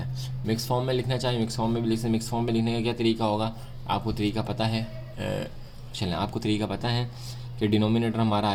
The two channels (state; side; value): identical; both; correlation 1.00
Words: हैं। मिक्स फॉर्म में लिखना चाहिए, मिक्स फॉर्म में भी लिख सकते हैं। मिक्स फॉर्म में लिखने का क्या तरीका होगा, आपको तरीका पता है। चलें, आपको तरीका पता है कि डिनोमिनेटर हमारा